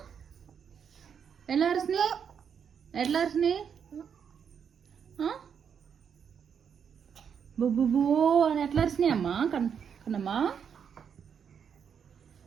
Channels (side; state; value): left; quieter; 7.4 dB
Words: ఎలా అరిసినాయి? ఎట్లా అరిసినాయి? బొబ్బుబో అని ఎట్లా అరిసినాయి అమ్మా? కన్నమ్మా